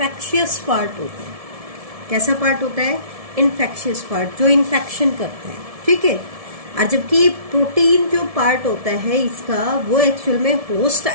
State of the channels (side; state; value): left; late; 1.7 ms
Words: पार्ट होता है। कैसा पार्ट होता है? इन्फेक्शियस पार्ट, जो इन्फेक्शन करता है। ठीक है। और जबकि प्रोटीन जो पार्ट होता है इसका, वो एक्चुअल में होस्ट